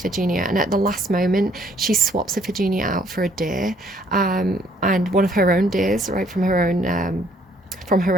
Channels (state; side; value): normal; both; correlation 0.64